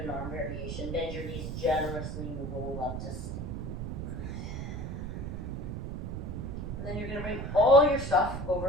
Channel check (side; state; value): right; noise; rumble, 4 dB below the sound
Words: an arm variation. Bend your knees generously and roll up to stand. And then you're going to bring all your stuff